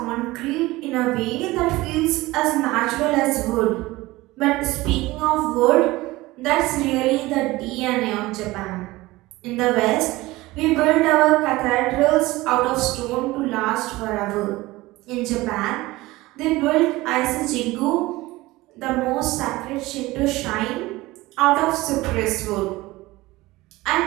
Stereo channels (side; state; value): left; quieter; 19.6 dB